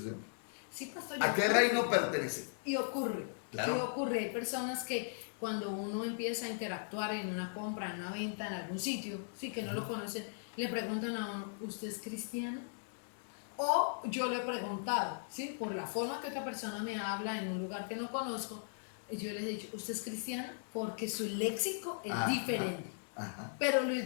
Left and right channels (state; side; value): silent; right; digital silence